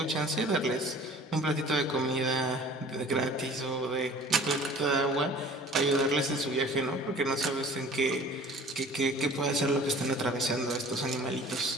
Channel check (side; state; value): both; normal; correlation 0.47